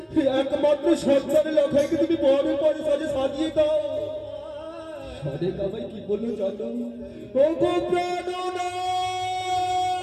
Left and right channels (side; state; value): both; identical; correlation 1.00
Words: একমাত্র সন্তান লখাইকে তুমি বরের পরে সাজে সাজিয়ে দাও। সরিকা ভাই কি বললো জানো? ও গো প্রাণনা,